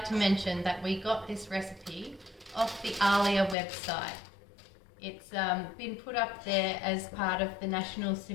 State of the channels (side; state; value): right; drops out; at 3.6 s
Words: to mention that we got this recipe off the Alia website. It's been put up there as part of the National